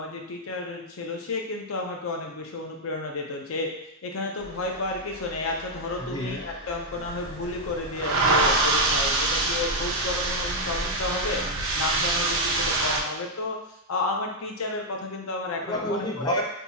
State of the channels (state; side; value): normal; both; correlation -0.01